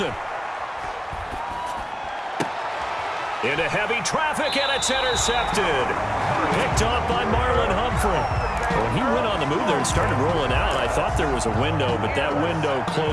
Into heavy traffic, and it's intercepted. Picked off by Marlon Humphrey. When he went on the move there and started rolling out, I thought there was a window, but that window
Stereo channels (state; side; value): identical; both; correlation 1.00